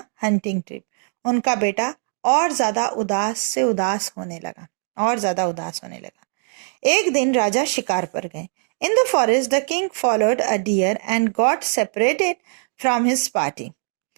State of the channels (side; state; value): left; silent; 64 dB below the other